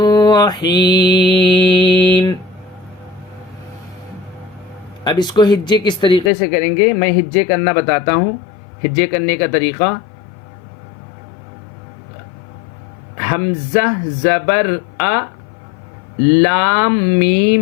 اب اس کو ہجے کس طریقے سے کریں گے، میں ہجے کرنا بتاتا ہوں. ہجے کرنے کا طریقہ: حمزہ زبر ا، لام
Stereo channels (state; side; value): drops out; right; at 6.3 s